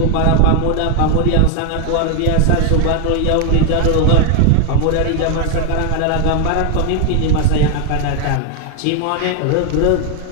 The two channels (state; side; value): different; both; correlation 0.00